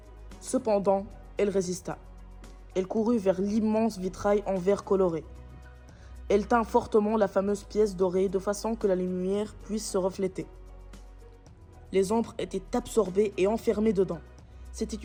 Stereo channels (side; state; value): both; identical; correlation 1.00